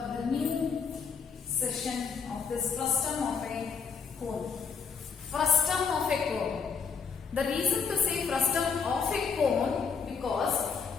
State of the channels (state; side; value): quieter; right; 5.8 dB